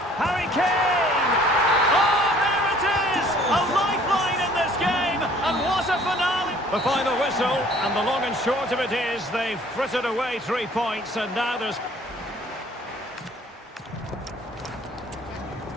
Harry Kane! Oh, there it is! A lifeline in this game, and what a finale! The final whistle, and the long and short of it is they've frittered away 3 points, and now there's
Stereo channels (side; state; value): both; normal; correlation 0.55